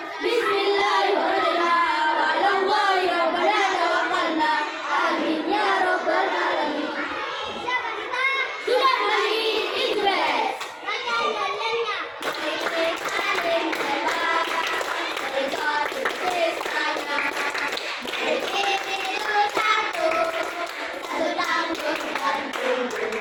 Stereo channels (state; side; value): identical; both; correlation 1.00